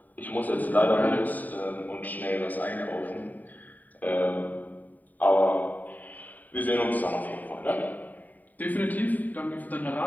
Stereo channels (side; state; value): right; late; 0.083 ms